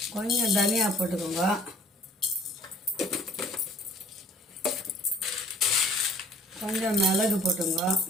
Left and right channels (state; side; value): normal; both; correlation 0.54